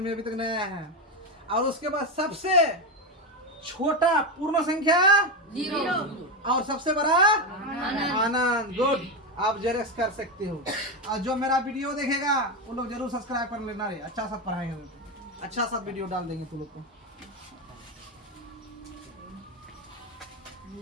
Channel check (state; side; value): normal; both; correlation 0.12